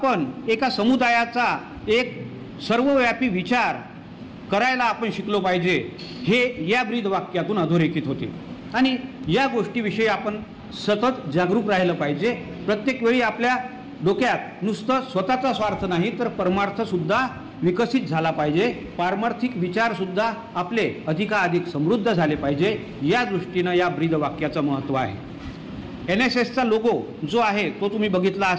एका समुदायाचा एक सर्वव्यापी विचार करायला आपण शिकलो पाहिजे, हे या ब्रीद वाक्यातून अधोरेखित होते. आणि या गोष्टीविषयी आपण सतत जागरूक राहिलं पाहिजे. प्रत्येक वेळी आपल्या डोक्यात नुसतं स्वतःचा स्वार्थ नाही तर परमार्थसुद्धा विकसित झाला पाहिजे. पारमार्थिक विचारसुद्धा आपले अधिकाधिक समृद्ध झाले पाहिजे. या दृष्टीनं या ब्रीद वाक्याचं महत्त्व आहे. NSSचा लोगो जो आहे तो तुम्ही बघितला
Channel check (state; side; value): identical; both; correlation 1.00